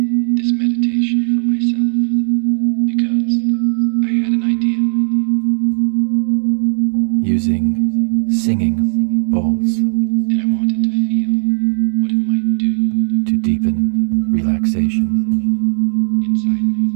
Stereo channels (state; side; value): silent; left; 65 dB below the other